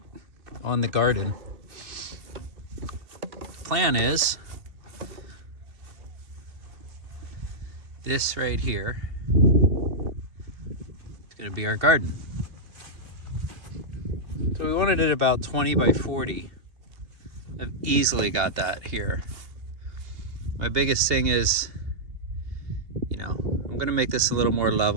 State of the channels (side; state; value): left; late; 2.7 ms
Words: on the garden. Plan is this right here. It's gonna be our garden. So we wanted it about 20 by 40. I've easily got that here. My biggest thing is, I'm gonna make this a little more